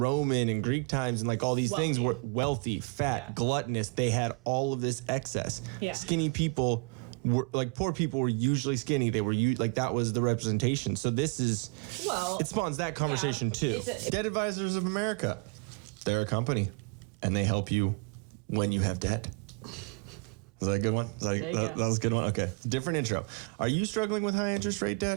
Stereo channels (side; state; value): left; quieter; 30.0 dB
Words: and Greek times and like all these things, were wealthy, fat, gluttonous. They had all of this excess. Yeah. Skinny people were like, poor people were usually skinny. They were like, that was the representation. So this is, it spawns that conversation too. Debt Advisors of America, they're a company and they help you when you have debt. Was that a good one? There you go. That was a good one? Okay. Different intro. Are you struggling with high interest rate